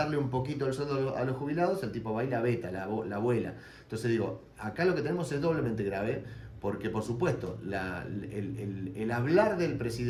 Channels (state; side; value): identical; both; correlation 1.00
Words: un poquito el sueldo a los jubilados, el tipo va y la veta, la vuela. Entonces digo, acá lo que tenemos es doblemente grave, porque por supuesto el hablar del